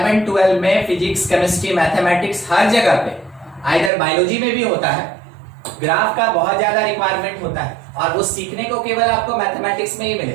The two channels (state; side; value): drops out; left; at 3.9 s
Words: 12 में, फिजिक्स केमिस्ट्री मैथमेटिक्स हर जगह पे, आइदर बायोलॉजी में भी होता है, ग्राफ का बहुत ज्यादा रिक्वायरमेंट होता है और वो सीखने को केवल आपको मैथमेटिक्स में ही